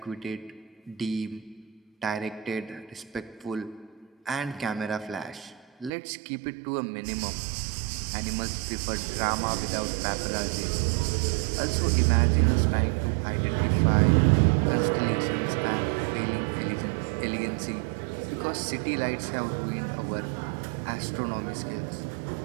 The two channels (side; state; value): left; drops out; at 5.9 s